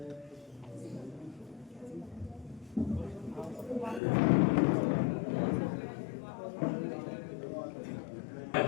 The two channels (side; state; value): right; drops out; at 4.0 s